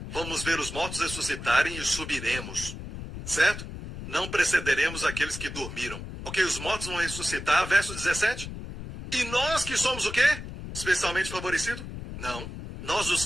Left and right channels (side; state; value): left; noise; rumble, 9 dB below the sound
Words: Vamos ver os mortos ressuscitarem e subiremos. Certo? Não precederemos aqueles que dormiram. Ok, os mortos vão ressuscitar, verso 17. E nós que somos o quê? Especialmente favorecidos? Não. Nós os